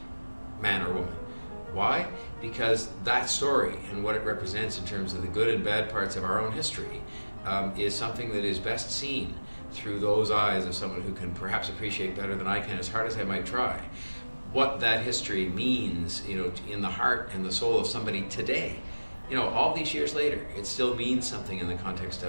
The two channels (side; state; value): both; inverted; correlation -1.00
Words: man or woman. Why? Because that story and what it represents in terms of the good and bad parts of our own history is something that is best seen through those eyes of someone who can perhaps appreciate better than I can, as hard as I might try, what that history means, in the heart and the soul of somebody today. All these years later, it still means something in the context